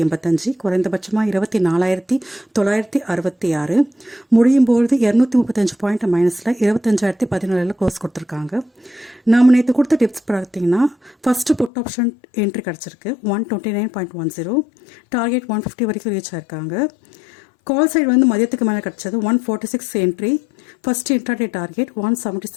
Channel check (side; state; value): right; drops out; at 11.7 s